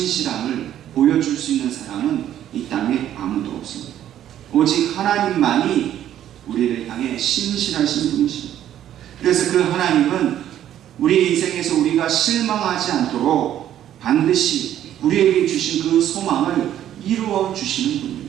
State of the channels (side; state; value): left; quieter; 11.3 dB